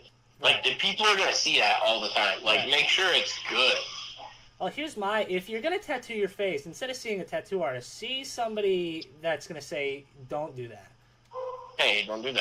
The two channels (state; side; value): identical; both; correlation 1.00